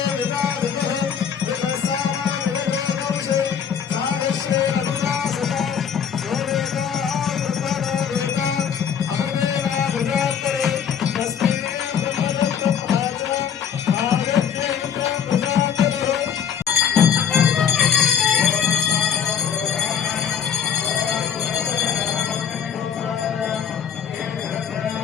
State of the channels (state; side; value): quieter; right; 7.9 dB